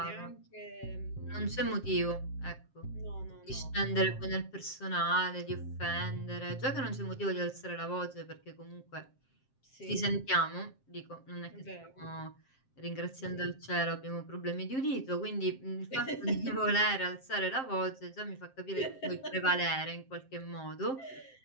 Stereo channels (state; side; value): late; right; 7.6 ms